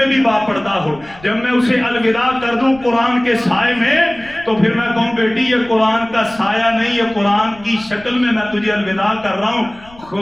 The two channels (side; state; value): left; noise; rumble, 23 dB below the sound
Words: بھی باپردہ ہو، جب میں اسے الوداع کر دوں قرآن کے سائے میں تو پھر میں کہوں بیٹی یہ قرآن کا سایہ نہیں، یہ قرآن کی شکل میں تجھے الوداع کر رہا ہوں.